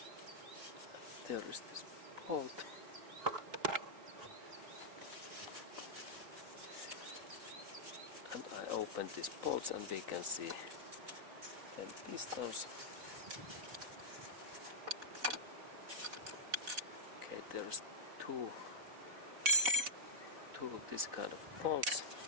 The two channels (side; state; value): left; late; 4.1 ms